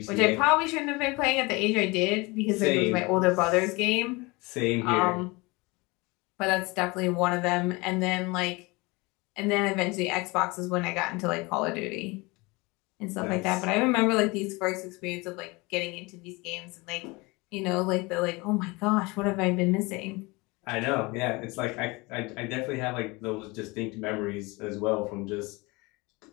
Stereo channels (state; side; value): quieter; right; 24.9 dB